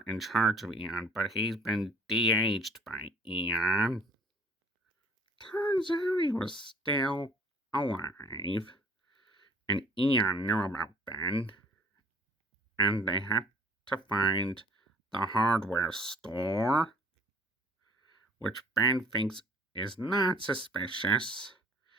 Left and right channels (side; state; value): both; normal; correlation 0.53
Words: in charge of Eon, but he's been de-aged by Eon. Turns out he was still alive, and Eon knew about Ben, and they had to find the hardware store, which Ben thinks is not suspicious,